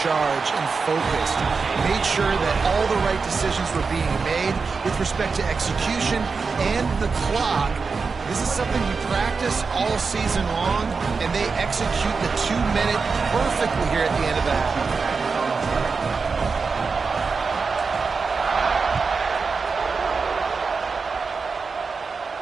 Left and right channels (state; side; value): quieter; left; 4.8 dB